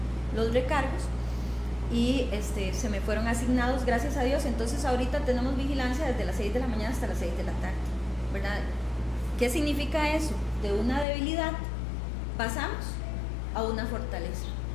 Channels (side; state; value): right; drops out; at 11.1 s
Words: los recargos, y se me fueron asignados, gracias a Dios. Entonces ahorita tenemos vigilancia desde las 6 de la mañana hasta las 6 de la tarde, ¿verdad? ¿Qué significa eso? De una debilidad pasamos a una fortaleza.